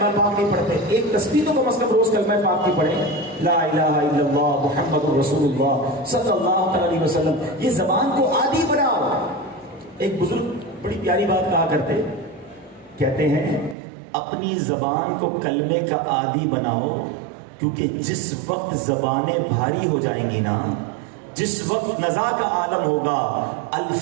پاک نہیں پڑھتے. ایک تسبیح تو کم از کم روز کلمہ پاک کی پڑھیں، لا الہ الا اللہ محمد رسول اللہ صلی اللہ علیہ وسلم. یہ زبان کو عادی بناؤ. ایک بزرگ بڑی پیاری بات کہا کرتے، کہتے ہیں اپنی زبان کو کلمے کا عادی بناؤ، کیونکہ جس وقت زبانیں بھاری ہو جائیں گی نا جس وقت نزا کا عالم ہوگا،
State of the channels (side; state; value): left; drops out; at 13.8 s